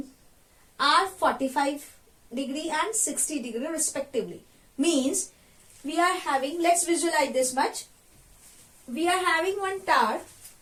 are 45 degree and 60 degree respectively. Means we are having, let's visualize this much. We are having one tower.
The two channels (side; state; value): both; identical; correlation 1.00